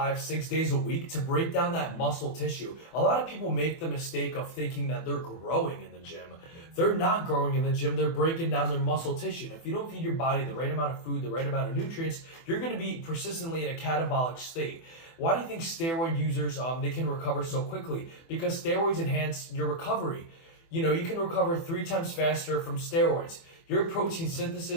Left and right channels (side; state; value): right; late; 24 ms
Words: 6 days a week to break down that muscle tissue. A lot of people make the mistake of thinking that they're growing in the gym. They're not growing in the gym. They're breaking down their muscle tissue. And if you don't feed your body the right amount of food, the right amount of nutrients, you're going to be persistently in a catabolic state. Why do you think steroid users, they can recover so quickly? Because steroids enhance your recovery. You can recover 3 times faster from steroids. Your protein